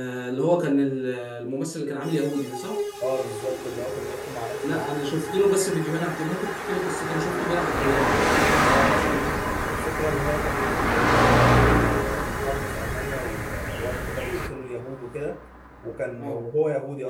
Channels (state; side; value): identical; both; correlation 1.00